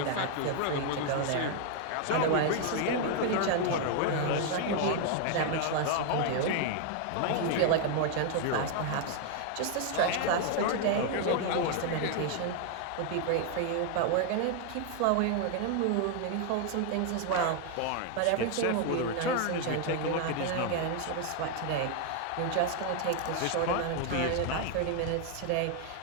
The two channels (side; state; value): both; different; correlation 0.01